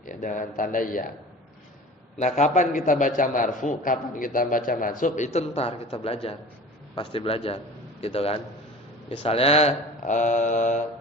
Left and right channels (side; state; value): both; normal; correlation 0.39